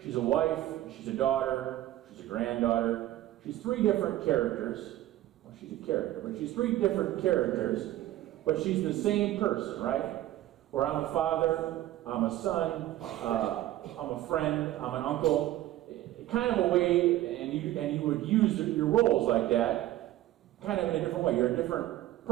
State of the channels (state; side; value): quieter; left; 14.5 dB